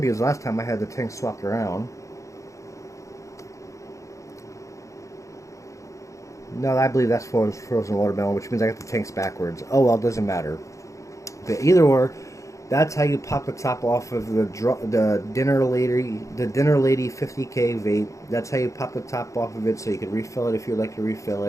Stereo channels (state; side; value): late; right; 0.15 ms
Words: last time I had the tank swapped around. No, I believe that's frozen watermelon, which means I got the tanks backwards. Oh well, it doesn't matter. But either or, that's how you pop the top off of the Dinner Lady 50K Vape. That's how you pop the top off of it, so you can refill it if you'd like to refill